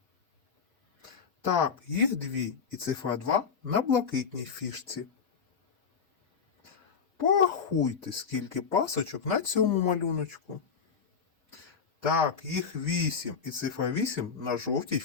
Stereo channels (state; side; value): quieter; right; 6.1 dB